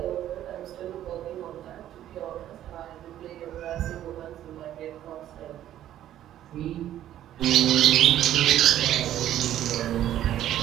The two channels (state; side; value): quieter; left; 12.1 dB